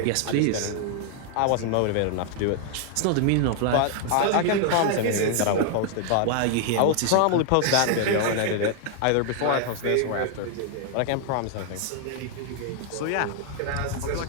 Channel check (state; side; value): different; both; correlation 0.00